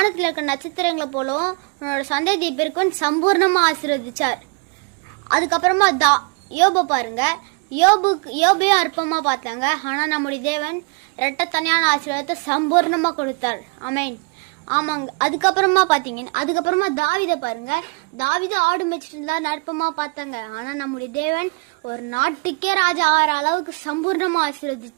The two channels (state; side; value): quieter; left; 33.2 dB